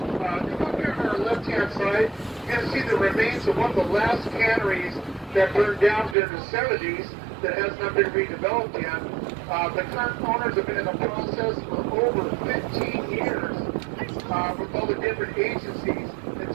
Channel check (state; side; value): drops out; left; at 6.2 s